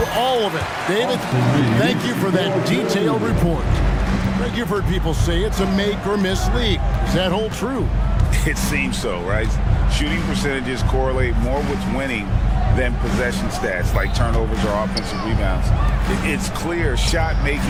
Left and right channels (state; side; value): identical; both; correlation 1.00